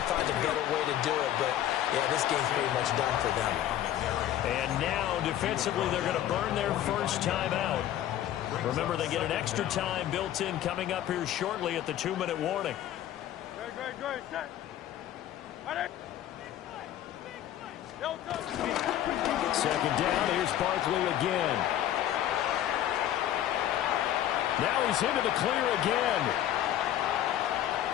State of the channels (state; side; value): quieter; right; 12.0 dB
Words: find a better way to do it. But, yeah, this game's pretty much done for them. And now, defensively, they're going to burn their first time out. Remember, they get an extra time built in coming up here shortly at the 2-minute warning. Good. Second down, here's Barkley again. Now he's into the clear again.